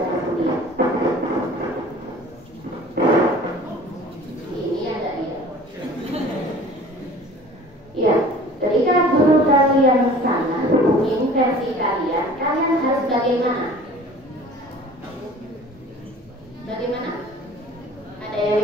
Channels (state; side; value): normal; both; correlation 0.46